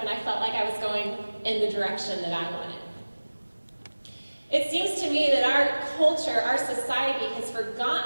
I felt like I was going in the direction that I wanted. It seems to me that our culture, our society, has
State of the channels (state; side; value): inverted; both; correlation -1.00